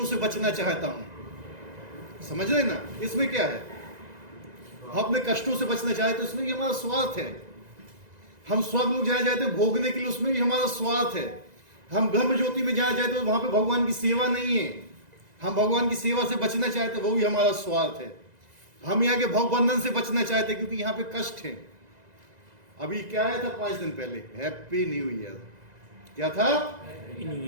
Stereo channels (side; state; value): left; late; 2.0 ms